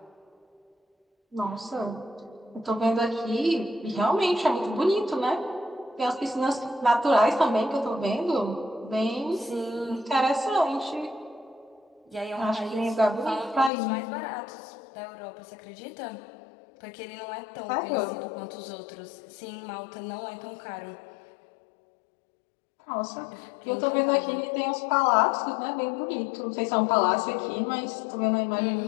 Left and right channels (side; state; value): right; drops out; at 13.7 s